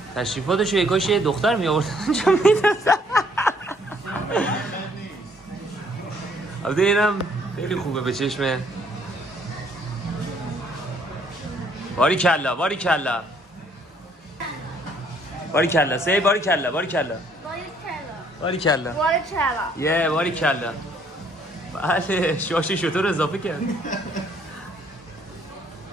تشریفاتشو یکاش یه دختر می آورد چون میدازم. البته اینم خیلی خوبه به چشمه. باری کلا باری کلا باری کلا سی باری کلا باری کلا باری کلا یه باری کلا. بله شاش شطور اضافه کرد.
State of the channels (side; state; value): both; normal; correlation 0.64